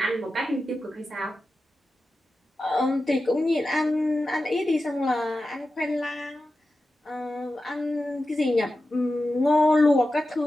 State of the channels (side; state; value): both; normal; correlation 0.93